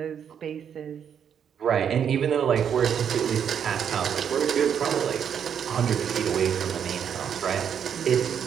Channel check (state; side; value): quieter; left; 8.2 dB